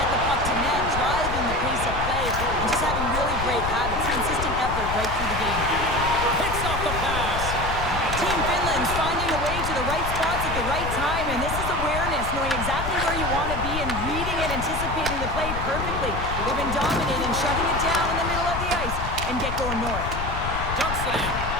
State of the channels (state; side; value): noise; left; rumble, 5 dB below the sound